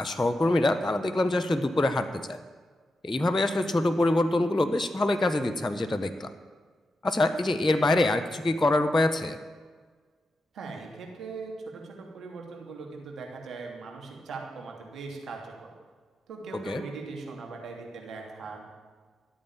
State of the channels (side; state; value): both; normal; correlation 0.88